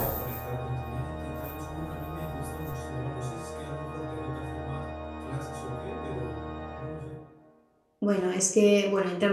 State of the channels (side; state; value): both; identical; correlation 1.00